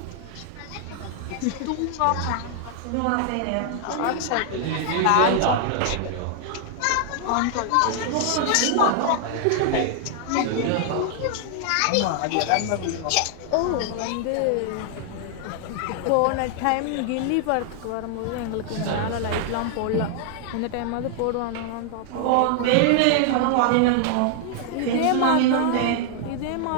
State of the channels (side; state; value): both; different; correlation 0.00